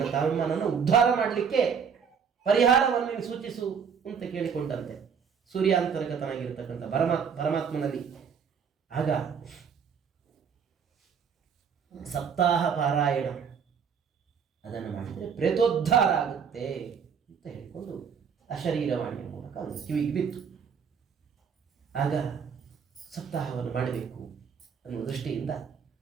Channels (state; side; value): quieter; left; 6.8 dB